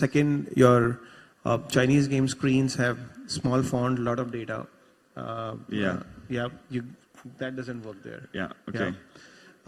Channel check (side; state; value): both; identical; correlation 1.00